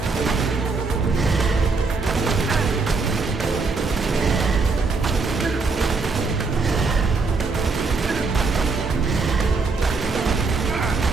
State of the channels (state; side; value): quieter; left; 4.2 dB